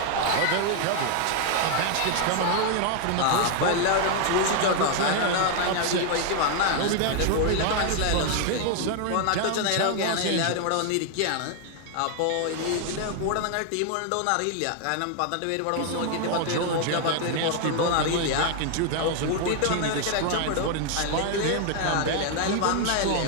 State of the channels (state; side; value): different; both; correlation 0.00